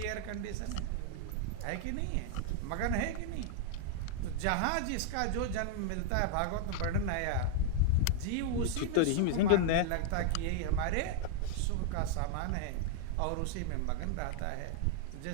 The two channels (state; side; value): different; both; correlation 0.00